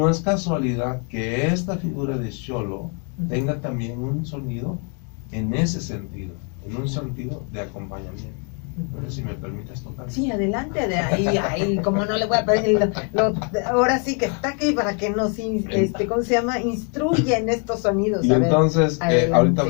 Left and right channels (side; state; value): right; quieter; 39.2 dB